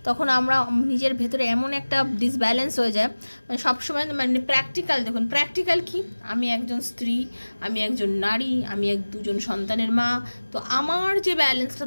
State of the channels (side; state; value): both; inverted; correlation -1.00